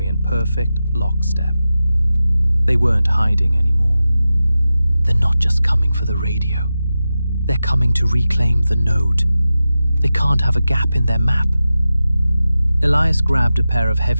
in perfect lockstep. They weren't hiding anymore. They're not just coming for the radio. They're coming to reclaim the node. They can't have a gap in their map. Elias grabbed a pair of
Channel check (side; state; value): both; inverted; correlation -0.93